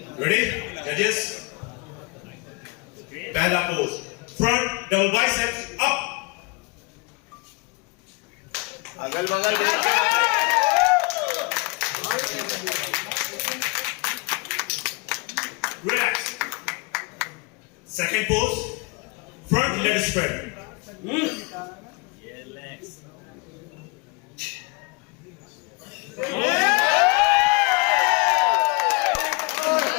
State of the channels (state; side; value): quieter; right; 29.1 dB